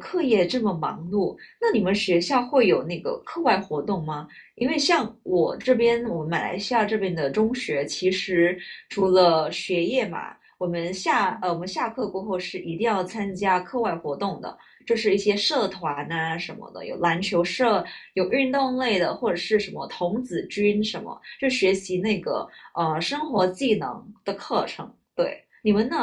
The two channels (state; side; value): identical; both; correlation 1.00